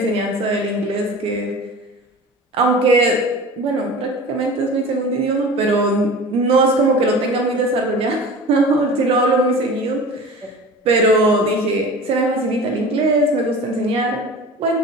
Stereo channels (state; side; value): normal; both; correlation 0.37